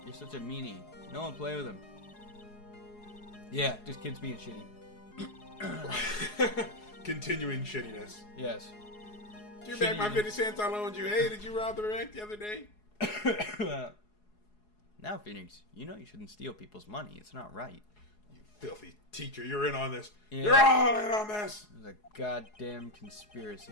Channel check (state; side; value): late; right; 4.8 ms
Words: You're such a meanie. No one play with him. Yeah, just kids being shitty. Continuing shittiness. Yes. Give back my 50 cents I loaned you. Hey, did you rob the bank the other day? Now, Phoenix, you know you shouldn't steal people's money. It's not right. You filthy teacher, you're in on this. Yeah. You're all in on this. It was a goddamn